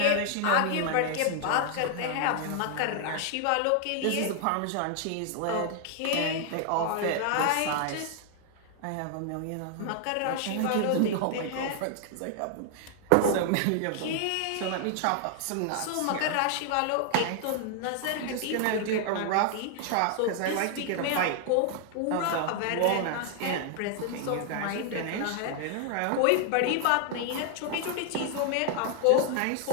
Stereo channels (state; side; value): different; both; correlation 0.00